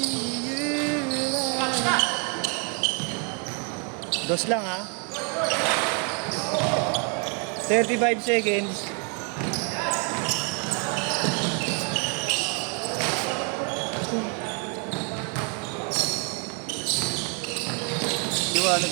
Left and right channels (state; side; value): quieter; left; 37.5 dB